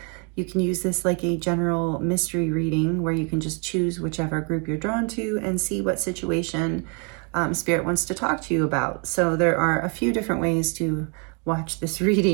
you can use this like a general mystery reading where you can just choose whichever group you're drawn to and see what situation Spirit wants to talk to you about. So there are a few different ways to watch this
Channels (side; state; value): left; quieter; 35.8 dB